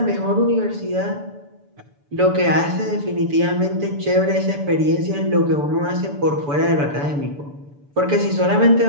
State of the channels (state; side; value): late; left; 6.9 ms